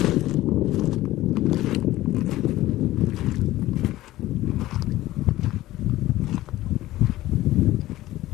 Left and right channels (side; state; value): right; quieter; 16.1 dB